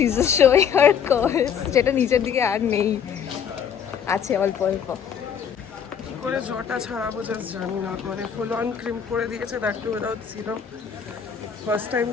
is just showing her curls, যেটা নিচের দিকে আর নেই, আছে অল্প অল্প। কি করে জটা ছাড়াবো জাস্ট জানি না, মানে ফুল অন ক্রিম করে দিয়েছে, that too without serum. First time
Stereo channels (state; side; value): quieter; right; 7.7 dB